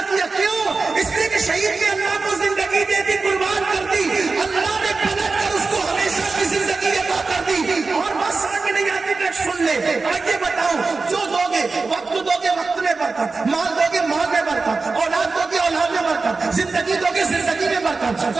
کیا. کیوں؟ اس لیے کہ شہید نے اللہ کو زندگی دے دی, قربان کر دی, اللہ نے پلٹ کر اس کو ہمیشہ کی زندگی عطا کر دی. اور بس آگے نہیں آتی کہ سن لے, آگے بتاؤ, جو دو گے وقت دو گے, وقت میں برکت, مال دو گے مال میں برکت, اولاد دو گے اولاد میں برکت, زندگی دو گے زندگی میں برکت,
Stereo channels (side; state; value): left; quieter; 4.1 dB